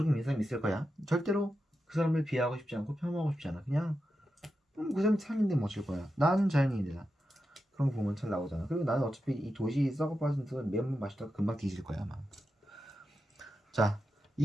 믿는 사람이 있을 거야. 절대로 그 사람을 비하하고 싶지 않고 폄하하고 싶지 않아. 그냥 그 사람이 산인데 뭐 어쩔 거야. 나는 자연인이다. 그런 거 보면 잘 나오잖아. 그리고 나는 어차피 이 도시 썩어 빠진 듯 매운맛 마시다가 금방 뒤질 거야 아마. 자,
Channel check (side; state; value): both; normal; correlation 0.89